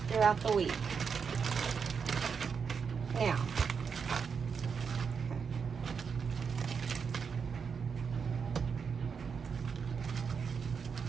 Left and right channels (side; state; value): left; quieter; 6.1 dB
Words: throughout the week. Now,